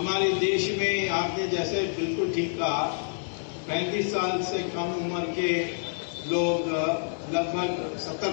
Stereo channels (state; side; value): silent; right; digital silence